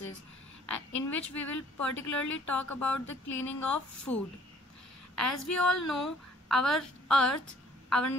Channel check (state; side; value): normal; both; correlation 0.58